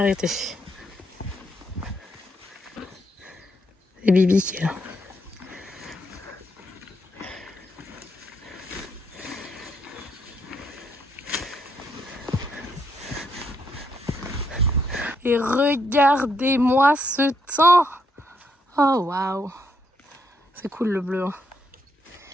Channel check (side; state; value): both; normal; correlation 0.75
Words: C'est Bibi qui est là. Et regardez-moi ce temps. Oh waouh. C'est cool le bleu. Hein.